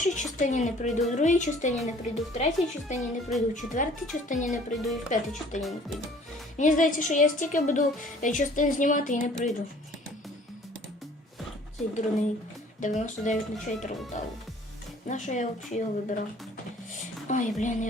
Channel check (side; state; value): both; normal; correlation 0.54